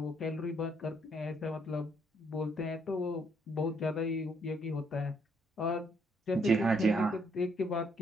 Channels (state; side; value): normal; both; correlation 0.71